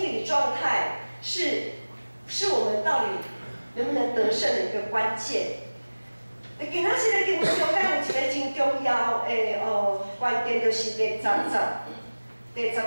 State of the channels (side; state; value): both; inverted; correlation -1.00